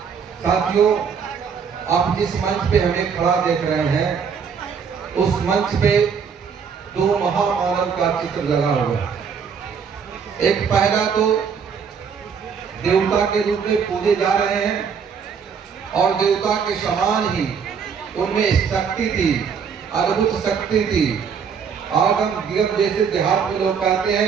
साथियों, आप जिस मंच पे हमें खड़ा देख रहे हैं, उस मंच पे दो महामानव का चित्र लगा हुआ है। एक पहला तो देवता के रूप में पूजे जा रहे हैं और देवता के समान ही उनमें शक्ति थी, अद्भुत शक्ति थी। आगम जैसे देहात में लोग कहते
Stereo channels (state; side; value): quieter; left; 6.6 dB